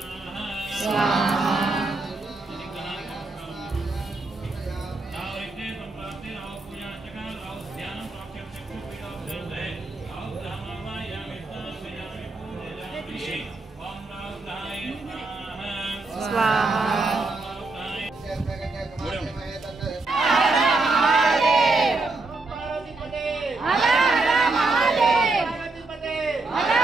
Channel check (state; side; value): quieter; left; 3.5 dB